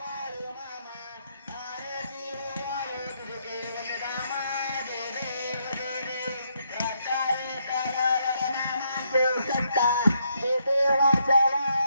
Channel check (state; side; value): inverted; both; correlation -0.76